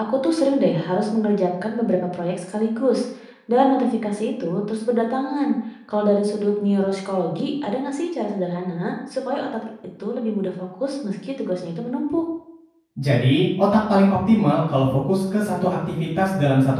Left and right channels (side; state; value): both; identical; correlation 1.00